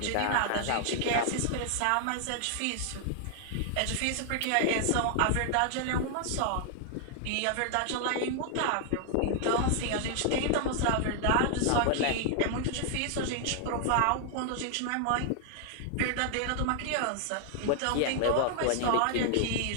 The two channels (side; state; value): both; different; correlation 0.00